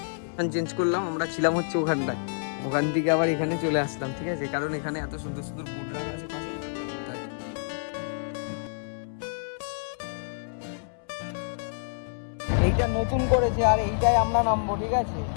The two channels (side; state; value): right; silent; 59 dB below the other